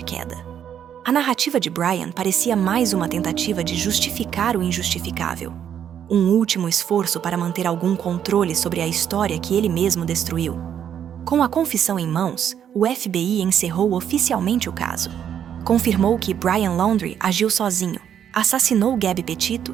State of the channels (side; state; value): left; quieter; 9.1 dB